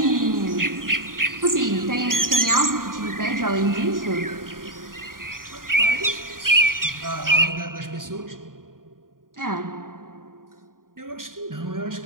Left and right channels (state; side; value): late; left; 0.91 ms